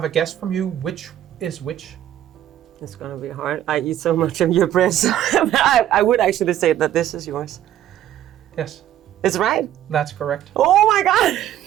a guess from you. Which is which? It's gonna be hard. I eat so much of your bread, so I would actually say that this is yours. Yes, It's right. that's correct. Oh my god!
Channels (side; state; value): left; quieter; 11.9 dB